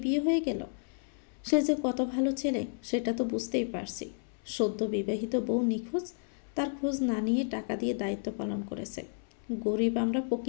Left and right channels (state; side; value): silent; right; 57 dB below the other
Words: বিয়ে হয়ে গেল। সে যে কত ভালো ছেলে সেটা তো বুঝতেই পারছি। সদ্য বিবাহিত বউ নিখোঁজ, তার খোঁজ না নিয়ে টাকা দিয়ে দায়িত্ব পালন করেছে। গরিব আমরা,